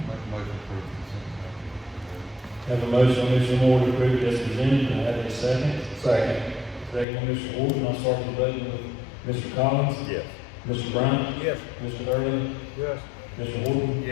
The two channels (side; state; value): right; drops out; at 7.1 s